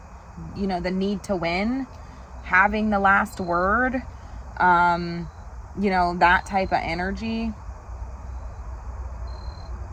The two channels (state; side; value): identical; both; correlation 1.00